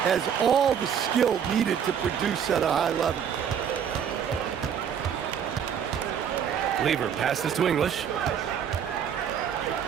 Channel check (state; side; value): quieter; left; 8.2 dB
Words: Has all the skill needed to produce at a high level. Lever passes to English.